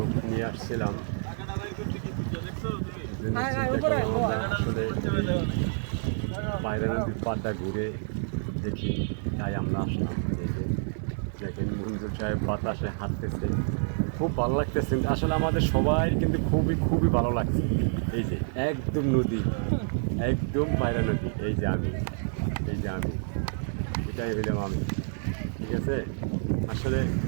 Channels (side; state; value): left; silent; digital silence